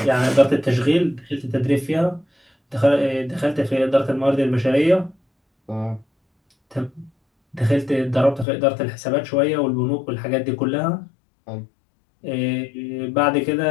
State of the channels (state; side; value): drops out; right; at 8.5 s